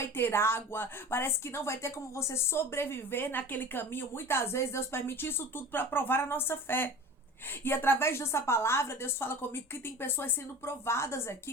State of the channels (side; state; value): both; normal; correlation 0.38